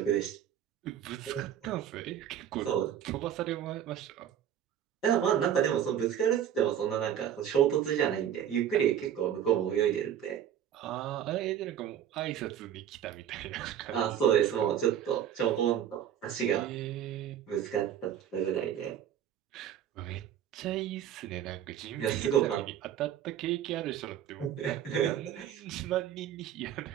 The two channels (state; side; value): quieter; left; 10.0 dB